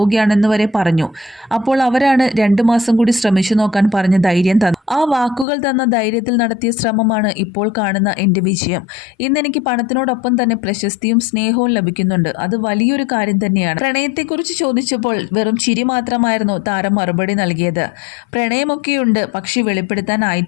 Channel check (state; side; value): drops out; right; at 5.5 s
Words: വരെ പറഞ്ഞു. അപ്പോൾ അവരാണ് 2 മാസം കൂടി ശ്രമിച്ചു നോക്കാൻ പറഞ്ഞ ധൈര്യം തന്നു. ആ വാക്കുകൾ തന്ന ധൈര്യത്തിൽ നടത്തിയ ശ്രമമാണ് ഇപ്പോൾ കാണുന്ന എൻ്റെ വിജയം. ഇന്നെനിക്ക് പണത്തിനോടൊപ്പം തന്നെ പ്രശസ്തിയും സ്നേഹവും ലഭിക്കുന്നുണ്ട്. അത് വലിയൊരു കാര്യം തന്നെയാണ്. പ്രണയത്തെക്കുറിച്ച് ചോദിച്ചപ്പോൾ വെറും ചിരി മാത്രമായിരുന്നു താരം മറുപടി നൽകിയത്. പ്രണയമൊക്കെയുണ്ട്, പക്ഷേ